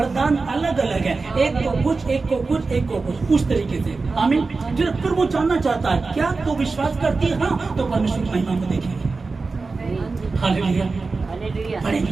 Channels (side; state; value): left; quieter; 4.0 dB